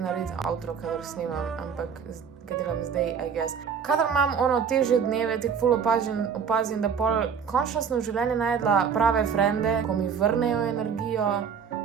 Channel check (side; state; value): left; quieter; 6.8 dB